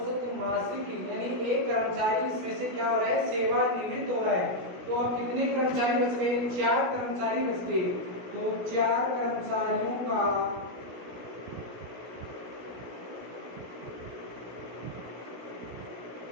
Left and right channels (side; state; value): left; late; 16 ms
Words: मासिक, यानी एक कर्मचारी इसमें से क्या हो रहा है, सेवानिवृत्त हो रहा है। तो अब कितने कर्मचारी बच गए, 4 कर्मचारी बच गए। तो 4 कर्मचारियों का